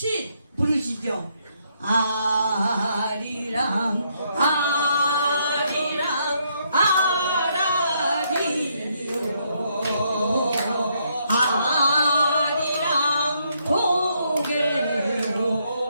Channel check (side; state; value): both; inverted; correlation -0.74